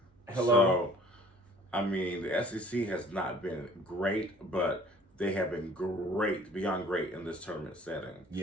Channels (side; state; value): both; normal; correlation 0.52